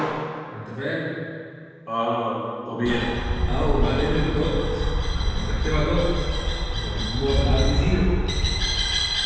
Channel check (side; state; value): both; identical; correlation 1.00